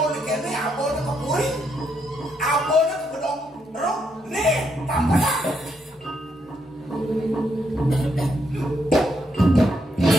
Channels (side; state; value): both; normal; correlation 0.77